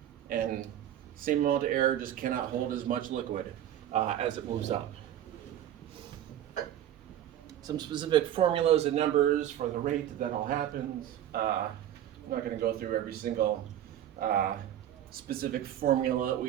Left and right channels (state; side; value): quieter; left; 11.3 dB